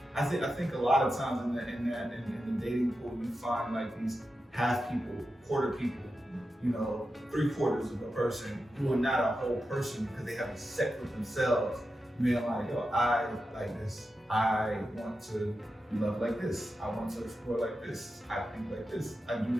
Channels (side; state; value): both; normal; correlation 0.90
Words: I think a lot of times in the dating pool, you find like these half people, quarter people, you know, 3/4 of a person who are not a whole person because they haven't set with themselves. Being like, yo, I like this. I want to love like this. I want to explore like this. I think like this. I do